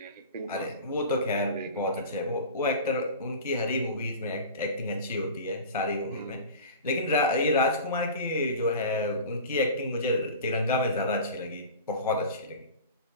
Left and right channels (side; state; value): both; inverted; correlation -0.35